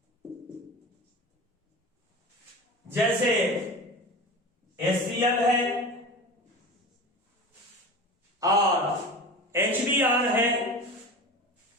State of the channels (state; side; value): normal; both; correlation 0.32